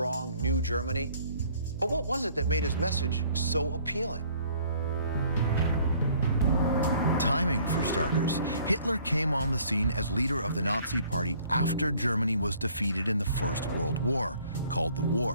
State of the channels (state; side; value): inverted; both; correlation -0.58